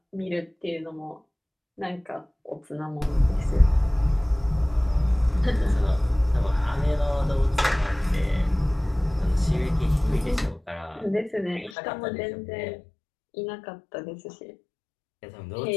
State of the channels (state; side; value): drops out; right; at 11.8 s